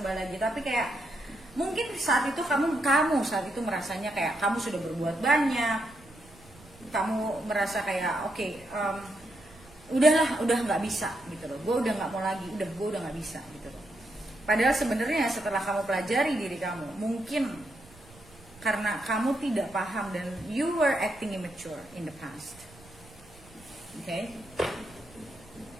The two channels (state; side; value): noise; right; rumble, 24 dB below the sound